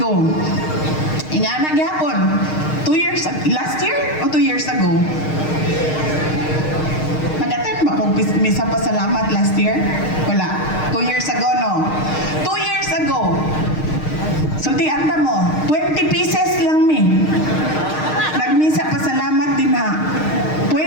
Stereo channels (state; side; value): late; right; 6.5 ms